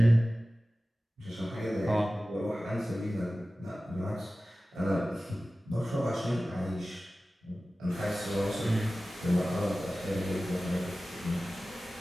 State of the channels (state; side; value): normal; both; correlation 0.96